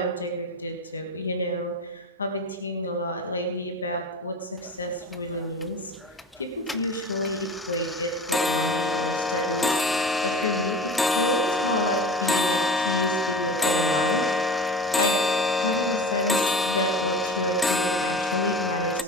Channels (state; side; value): normal; both; correlation 0.33